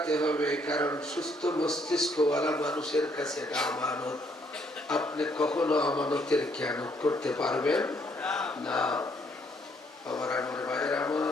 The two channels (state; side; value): normal; both; correlation 0.69